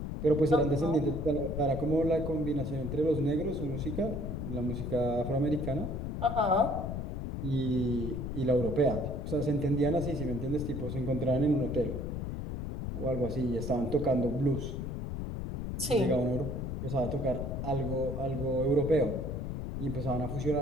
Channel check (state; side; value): noise; left; rumble, 4 dB below the sound